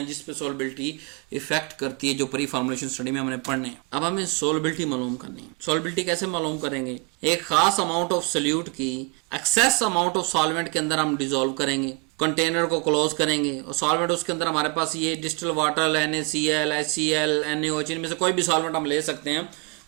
जिसपे सोलबिलिटी इफेक्ट करती है, जो प्री फॉर्मुलेशन स्टडी में हमने पढ़ने। अब हमें सोलबिलिटी मालूम करनी है। सोलबिलिटी कैसे मालूम करेंगे? एक खास अमाउंट ऑफ सोल्यूट की एक्सेस अमाउंट ऑफ सॉल्वेंट के अंदर हम डिसॉल्व करेंगे, कंटेनर को क्लोज करेंगे और सॉल्वेंट उसके अंदर हमारे पास ये distil water, NaCl, HCl, NaOH, इनमें से कोई भी सॉल्वेंट हम ले सकते हैं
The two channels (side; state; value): left; quieter; 29.1 dB